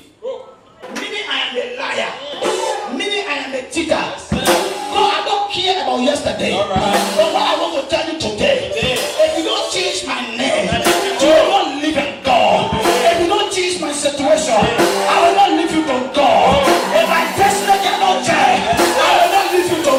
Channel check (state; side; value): identical; both; correlation 1.00